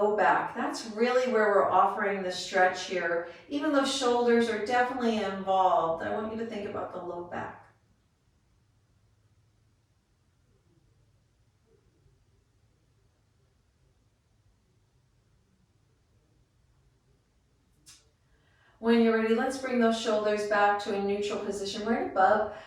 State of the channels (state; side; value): identical; both; correlation 1.00